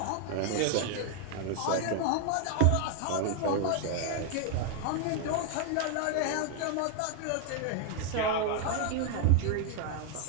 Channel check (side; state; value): both; different; correlation 0.00